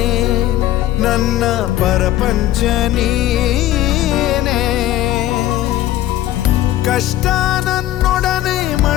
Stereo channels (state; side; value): quieter; right; 13.9 dB